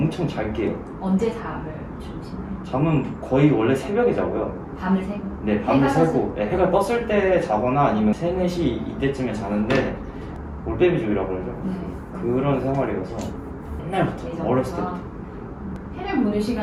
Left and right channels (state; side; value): identical; both; correlation 1.00